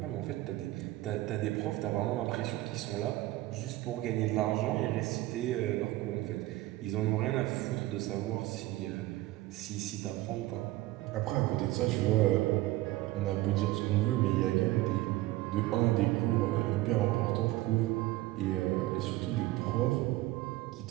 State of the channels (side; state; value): left; quieter; 17.4 dB